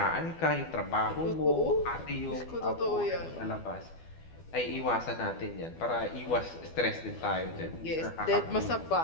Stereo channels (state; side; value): late; right; 12 ms